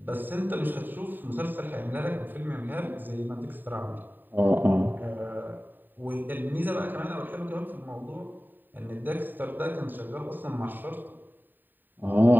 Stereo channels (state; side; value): late; left; 0.091 ms